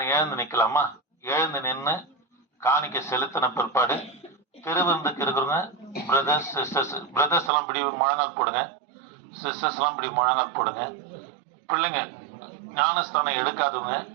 எழுந்து நிக்கலாமா? எழுந்து நின்று காணிக்க செலுத்தின பிற்பாடு திருவிருந்துக்கு இருக்கிறவங்க பிரதர்ஸ் சிஸ்டர்ஸ், பிரதர்ஸ் எல்லாம் இப்படி முழங்கால் போடுங்க, சிஸ்டர்ஸ் எல்லாம் இப்படி முழங்கால் போடுங்க. பிள்ளைங்க ஞானஸ்தானம் எடுக்காதவங்க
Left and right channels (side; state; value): left; drops out; at 7.5 s